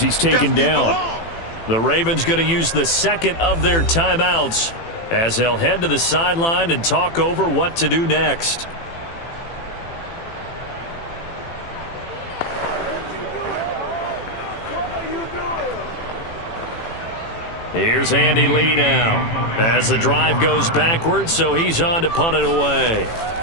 he's taken down. The Ravens going to use the 2nd of their timeouts as they'll head to the sideline and talk over what to do next. Here's Andy Lee now as the drive goes backwards, so he's on to punt it away.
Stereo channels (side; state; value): right; late; 18 ms